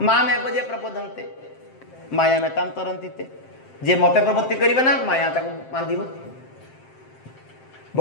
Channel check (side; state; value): right; late; 7.6 ms